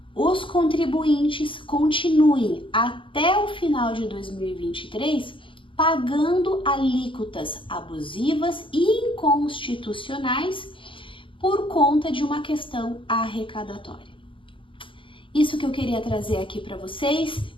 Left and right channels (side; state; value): right; late; 0.25 ms